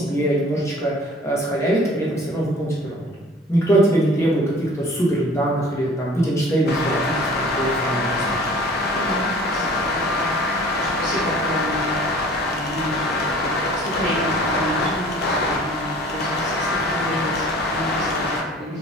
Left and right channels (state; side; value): normal; both; correlation 0.48